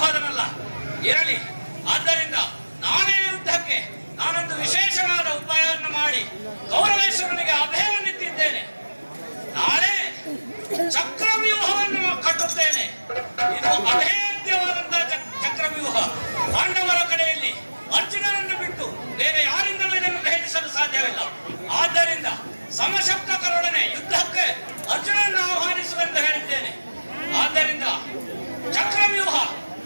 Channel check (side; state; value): both; inverted; correlation -1.00